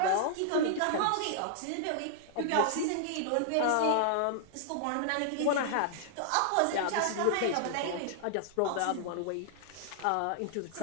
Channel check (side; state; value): both; different; correlation -0.01